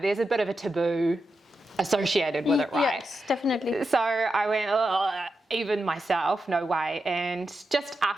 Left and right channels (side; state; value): both; normal; correlation 0.88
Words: a bit of a taboo associated with it, right? Yes, definitely. So I went, oh, even myself, no way. And just